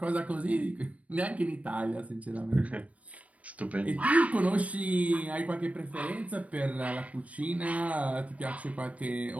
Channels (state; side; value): late; left; 0.067 ms